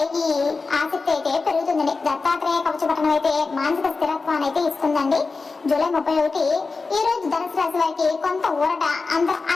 ఈ ఆసక్తి అయితే పెరుగుతుందండి. దత్తాత్రేయ కవచపఠనం అయితే మానసిక స్థిరత్వాన్ని అయితే ఇస్తుందండి. జూలై 31 ఈ రోజు ధనుసు రాశి వారికి కొంత ఊరట,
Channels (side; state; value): right; quieter; 4.1 dB